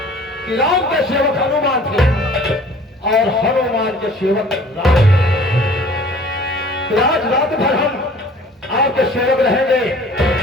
कि राम के सेवक हनुमान थे और हनुमान के सेवक राम। तो आज रात भर हम आपके सेवक रहेंगे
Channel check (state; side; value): normal; both; correlation 0.50